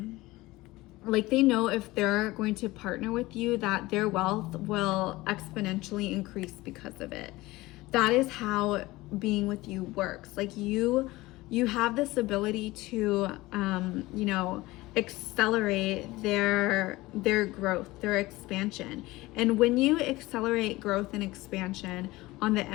like they know if they're going to partner with you, that their wealth will exponentially increase because of it. That is how being with you works. Like you have this ability to, accelerate their growth, their expansion. And when you accelerate growth and expansion on the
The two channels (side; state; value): right; quieter; 19.6 dB